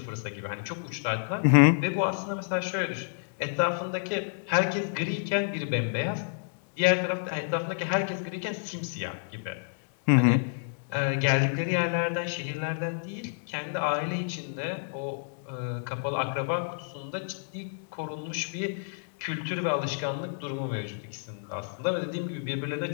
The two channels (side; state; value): right; silent; digital silence